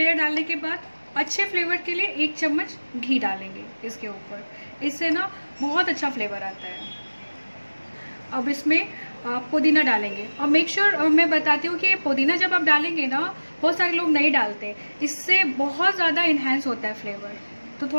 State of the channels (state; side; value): inverted; both; correlation -1.00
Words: डालने के बाद अच्छे फ्लेवर के लिए 1 चम्मच घी डालेंगे इसके ऊपर, इससे ना बहुत अच्छा फ्लेवर आता है। अब इसमें पुदीना डालेंगे और मेक श्योर मैं बताती हूँ कि ये पुदीना जब आप डालेंगे ना, बहुत सारे लोग नहीं डालते, इससे बहुत ज़्यादा इन्हेंस होता है फ्लेवर। तो